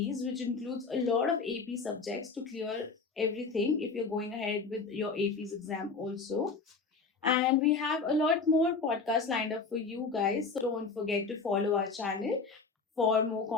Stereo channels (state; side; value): quieter; right; 4.6 dB